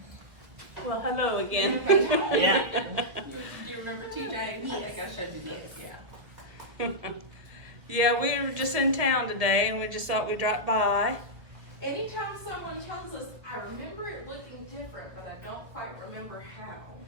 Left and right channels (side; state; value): left; late; 1.4 ms